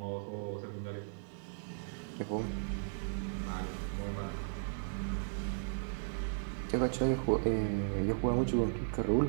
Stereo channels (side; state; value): left; silent; 54 dB below the other